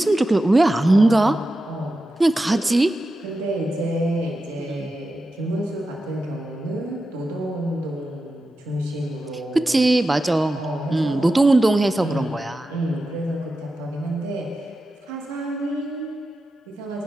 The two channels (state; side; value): normal; both; correlation 0.91